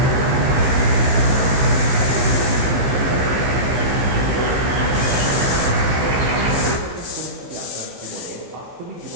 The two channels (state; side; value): late; left; 15 ms